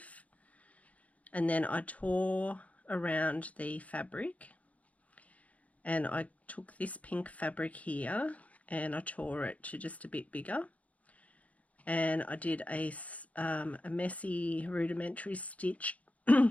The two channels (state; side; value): late; right; 0.068 ms